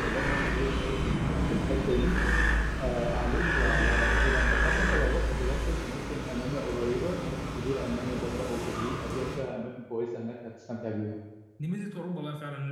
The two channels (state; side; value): identical; both; correlation 1.00